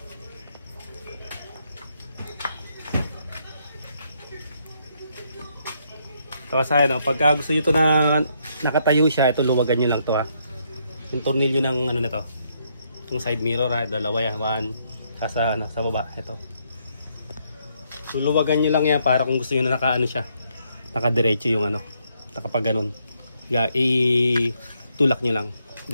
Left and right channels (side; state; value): both; inverted; correlation -0.74